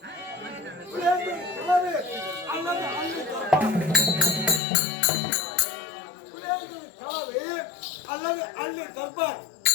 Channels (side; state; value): right; drops out; at 4.6 s